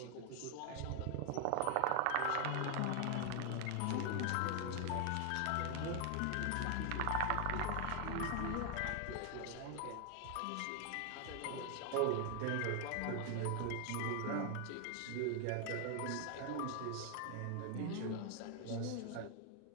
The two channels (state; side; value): different; both; correlation 0.00